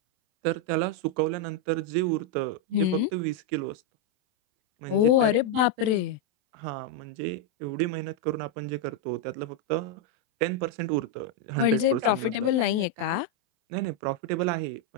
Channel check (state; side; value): late; left; 28 ms